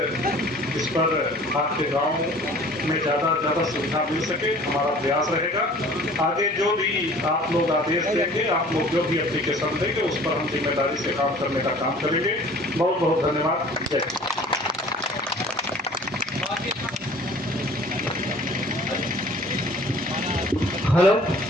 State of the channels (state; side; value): normal; both; correlation 0.49